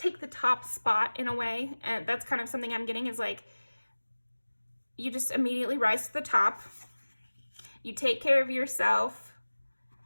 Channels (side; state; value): both; inverted; correlation -1.00